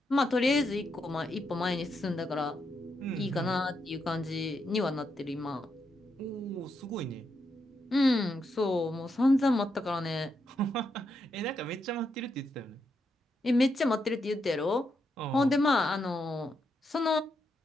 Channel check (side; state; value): both; normal; correlation 0.82